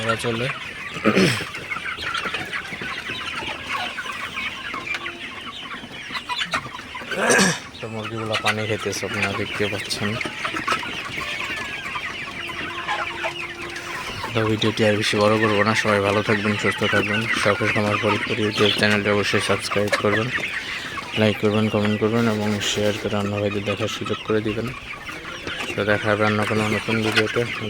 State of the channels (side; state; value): both; identical; correlation 1.00